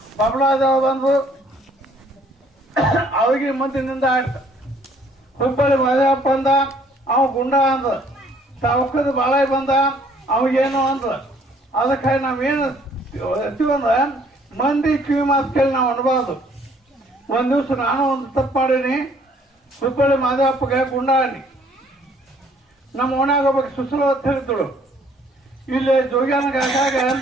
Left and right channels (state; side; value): normal; both; correlation 0.61